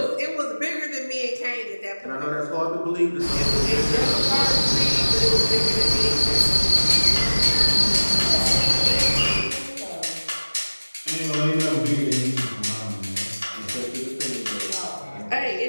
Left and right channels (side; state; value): both; inverted; correlation -1.00